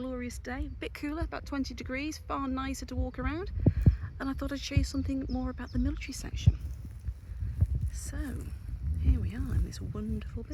day, a bit cooler, about 20 degrees, far nicer to walk around. And I thought I'd show you something more about the military section. So here we are in this wonderful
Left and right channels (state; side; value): identical; both; correlation 1.00